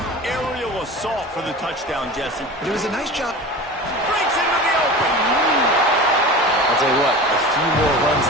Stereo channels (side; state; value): both; normal; correlation 0.34